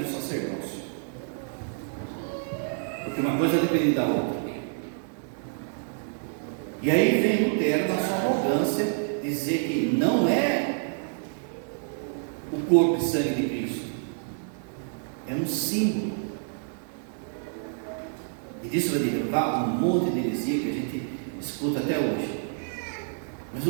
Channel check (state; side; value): silent; left; digital silence